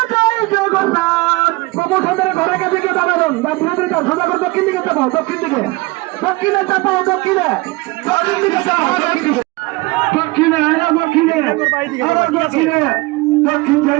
জগন্নাথ প্রমোশনের ঘরের কাছে গিয়ে দাঁড়াবেন বা বিরোধীরা সোজা করে দক্ষিণ দিকে চাপাও দক্ষিণ দিকে দক্ষিণে চাপাও দক্ষিণে দক্ষিণ দিকে চাপাও দক্ষিণে দক্ষিণে আবার দক্ষিণে দক্ষিণ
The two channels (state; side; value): quieter; left; 23.2 dB